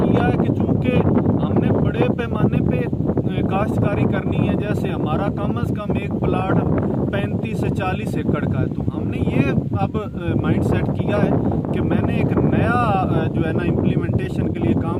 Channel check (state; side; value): identical; both; correlation 1.00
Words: है कि चूँकि हमने बड़े पैमाने पे काश्तकारी करनी है, जैसे हमारा कम अज़ कम एक प्लाट 35 से 40 एकड़ का है, तो हमने ये अब माइंड सेट किया है कि मैंने एक नया जो है ना इम्प्लीमेंटेशन के लिए काम